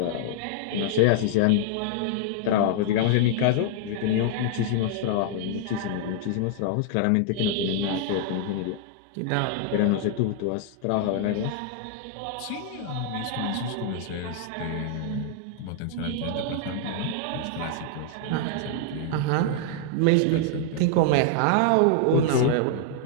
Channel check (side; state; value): both; different; correlation -0.01